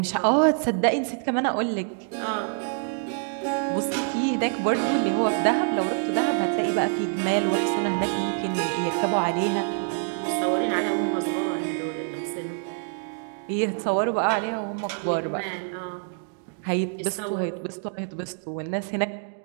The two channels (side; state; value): left; silent; 61 dB below the other